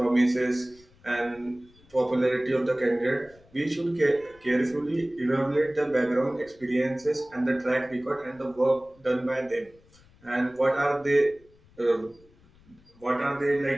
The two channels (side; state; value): left; noise; rumble, 28 dB below the sound